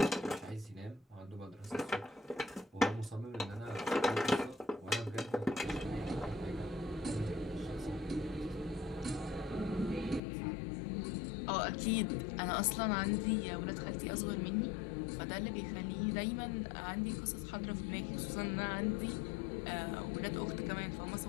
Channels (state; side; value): drops out; right; at 10.2 s